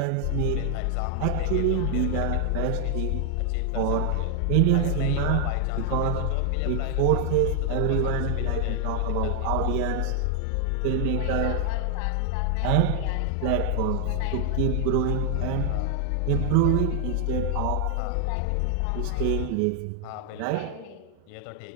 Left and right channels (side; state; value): both; different; correlation 0.00